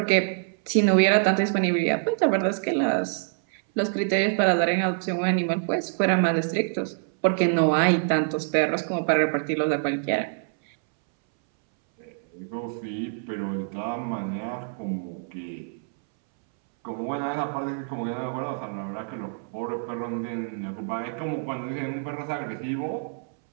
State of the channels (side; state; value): left; silent; 61 dB below the other